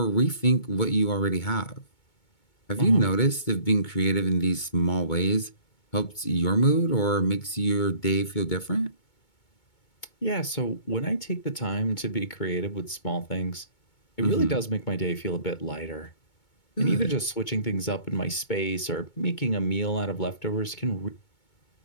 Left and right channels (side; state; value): right; late; 2.2 ms